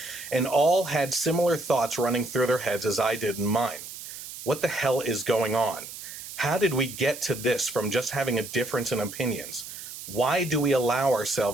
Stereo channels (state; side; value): noise; right; hiss, 11 dB below the sound